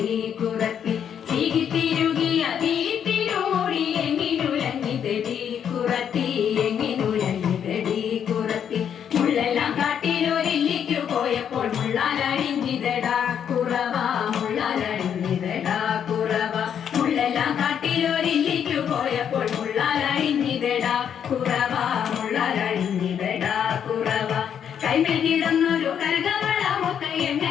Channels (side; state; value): right; quieter; 8.5 dB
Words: കുറത്തി ചീകിത്തിരുകിയ കിളിത്തിരുമുടി എങ്ങിനുലഞ്ഞിതടി കുറത്തി എങ്ങിനുലഞ്ഞിതടി കുറത്തി മുള്ളെല്ലാം കാട്ടിലൊരില്ലിക്കു പോയപ്പോൾ മുള്ളാലഴിഞ്ഞിതടാ കുറവ മുള്ളാലഴിഞ്ഞിതടാ കുറവ മുള്ളെല്ലാം കാട്ടിലൊരില്ലിക്കു പോയപ്പോൾ മുള്ളാലഴിഞ്ഞിതടാ കുറവ മുള്ളാലഴിഞ്ഞിതടാ കുറവ കൈമേൽ കിടന്നൊരു കനകവളമൊക്കെ